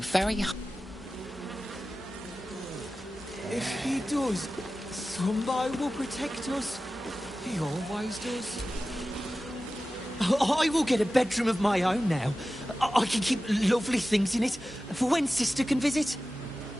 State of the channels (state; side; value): normal; both; correlation 0.95